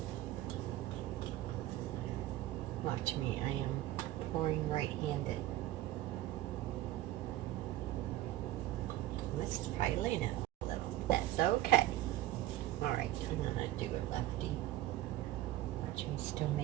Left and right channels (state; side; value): quieter; left; 15.2 dB